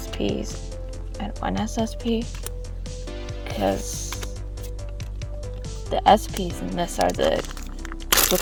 and 1 SSP. Because the SPs in this are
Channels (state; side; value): identical; both; correlation 1.00